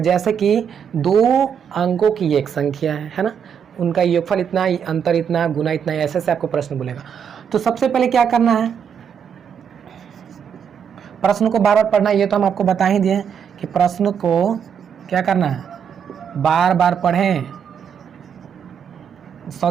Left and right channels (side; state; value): left; quieter; 7.5 dB